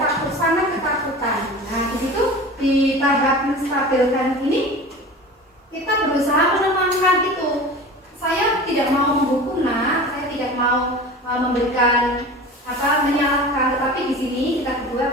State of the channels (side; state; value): both; normal; correlation 0.36